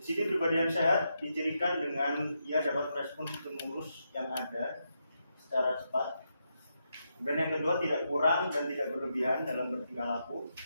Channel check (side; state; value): both; inverted; correlation -0.83